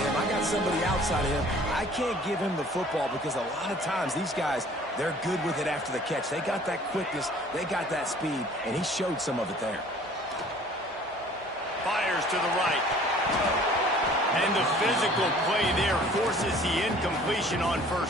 him. I got somebody outside of him. I can't give him the football because a lot of times these guys, they're good with it after the catch. They got that quickness. They got that speed, and he showed some of it there. Fires to the right. And the physical play there forces the incompletion on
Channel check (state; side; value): normal; both; correlation 0.51